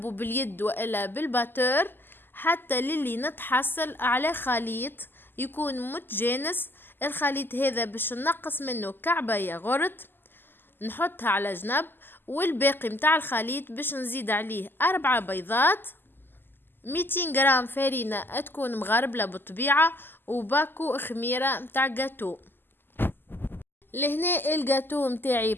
باليد والا بالباتور حتى للي نتحصل على خليط يكون متجانس. الخليط هذا باش نقص منه كعبة ياغورت نحطها على جنب، والباقي متاع الخليط باش نزيد عليه 4 بيضات، 200 جرام فرينة تكون مغربلة بالطبيعة، وباكو خميرة متاع جاتو. لهنا الجاتو متاعي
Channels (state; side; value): late; right; 0.096 ms